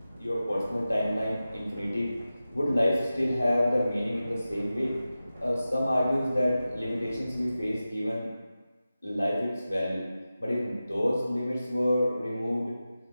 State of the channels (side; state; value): both; inverted; correlation -0.94